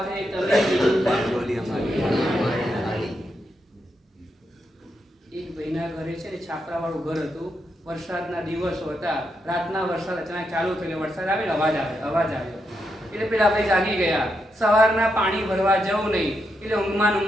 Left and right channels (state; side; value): normal; both; correlation 0.83